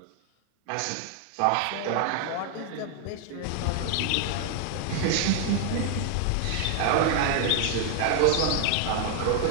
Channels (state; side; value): different; both; correlation 0.00